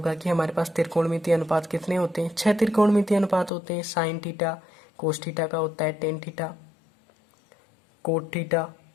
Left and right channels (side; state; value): right; drops out; at 3.5 s